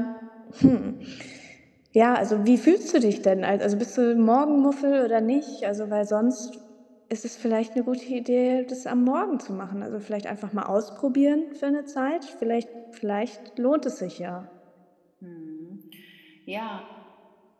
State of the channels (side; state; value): both; identical; correlation 1.00